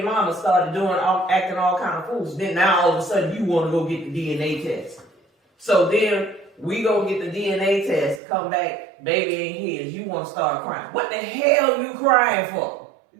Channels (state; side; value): drops out; left; at 8.2 s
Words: mama started acting all kind of fools, then now all of a sudden you want to go get the DNA test. So then we go get the DNA test, come back, baby ain't his, you want to start crying. What the hell you crying for?